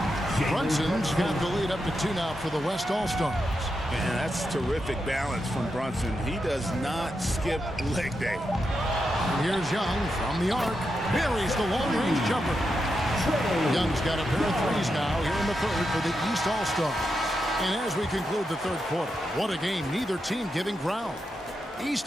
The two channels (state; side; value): normal; both; correlation 0.86